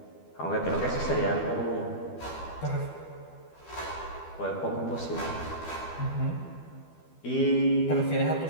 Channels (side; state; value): right; late; 12 ms